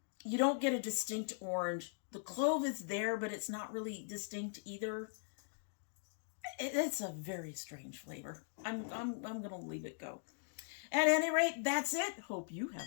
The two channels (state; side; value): silent; right; digital silence